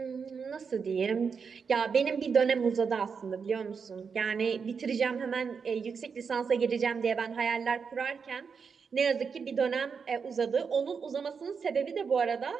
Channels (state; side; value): quieter; left; 5.9 dB